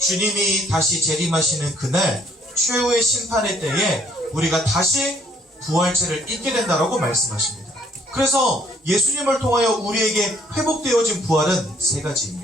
다시 재림하시는 그날 최후의 심판의 때에 우리가 다시 부활체를 입게 된다라고 말씀하십니다. 그래서 예수님을 통하여 우리에게 회복되어진 부활은 세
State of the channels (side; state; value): both; normal; correlation 0.64